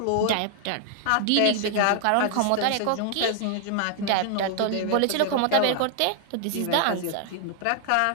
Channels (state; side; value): different; both; correlation 0.00